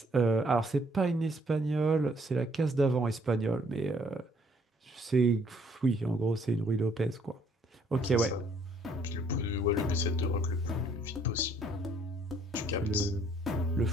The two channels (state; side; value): normal; both; correlation 0.64